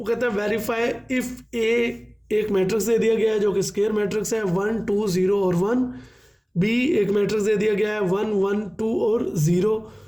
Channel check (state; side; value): identical; both; correlation 1.00